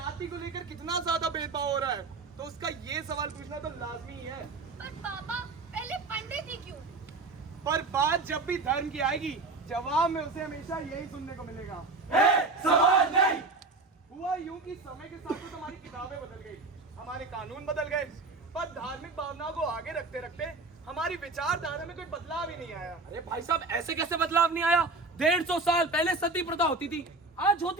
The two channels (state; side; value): quieter; left; 3.5 dB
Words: को लेकर कितना ज्यादा भेदभाव हो रहा है, तो उसका ये सवाल पूछना तो लाजमी ही है। पर पापा, पहले पंडित ही क्यों? पर बात जब भी धर्म की आएगी, जवाब में उसे हमेशा यही सुनने को मिलेगा, सवाल नहीं। हुआ यूं कि समय के साथ तो हमारी किताबें बदल गई, हमारे कानून बदल गए, पर धार्मिक भावनाओं को आगे रखते रखते हमारी विचारधारा में कोई बदलाव ही नहीं आया। अरे भाई साहब, ऐसे कैसे बदलाव नहीं आया? 150 साल पहले सती प्रथा होती थी, आज